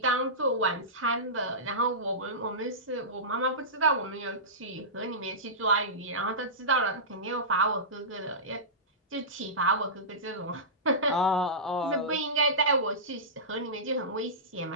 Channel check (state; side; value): normal; both; correlation -0.19